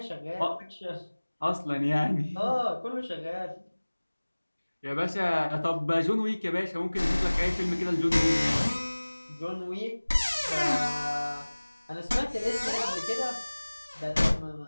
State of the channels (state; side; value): inverted; both; correlation -1.00